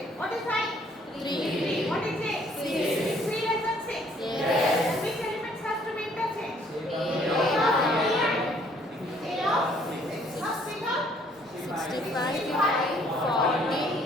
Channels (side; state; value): both; normal; correlation 0.62